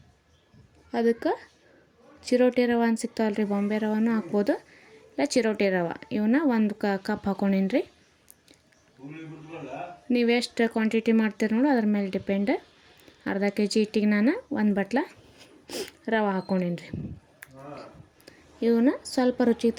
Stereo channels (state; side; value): identical; both; correlation 1.00